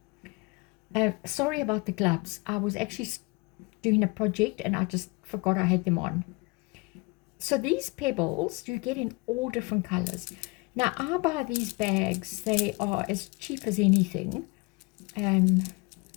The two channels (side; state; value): right; quieter; 27.5 dB